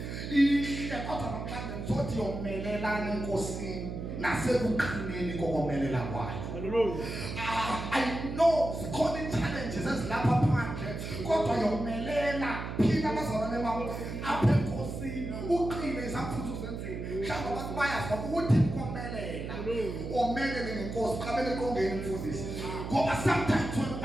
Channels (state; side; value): noise; right; hum, 6 dB below the sound